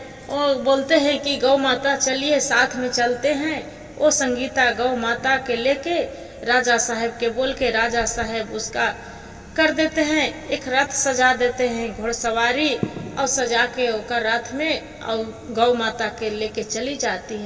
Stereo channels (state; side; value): identical; both; correlation 1.00